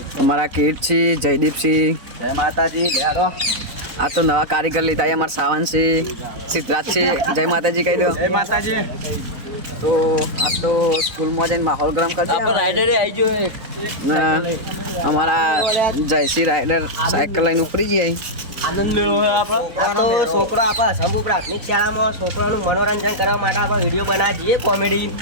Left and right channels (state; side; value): late; left; 4.0 ms